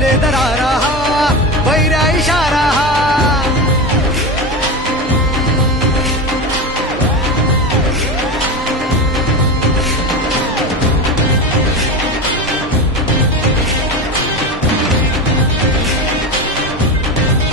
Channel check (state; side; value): normal; both; correlation 0.22